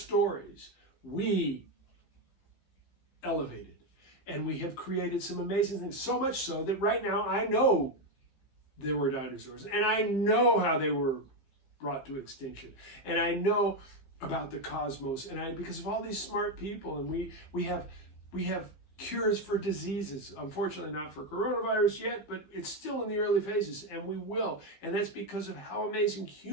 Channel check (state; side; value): late; right; 15 ms